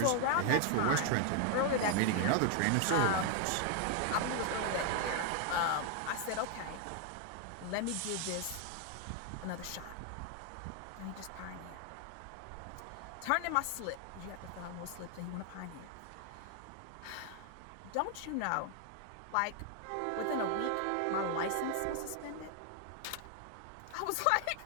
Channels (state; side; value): different; both; correlation 0.00